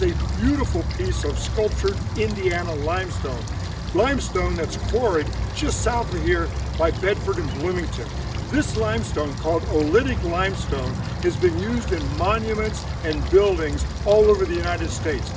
a beautiful piece of sculptured Indiana limestone. Limestone that's quarried just south of here by Bedford and Bloomington. This limestone, called oolitic limestone, has been used in monuments and buildings all over the United States.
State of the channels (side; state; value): both; identical; correlation 1.00